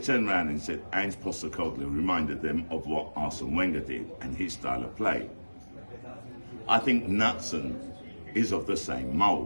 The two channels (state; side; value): inverted; both; correlation -1.00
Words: around and said Ange Postecoglou reminded them of what Arsene Wenger did and his style of play. I think Knutson is of the same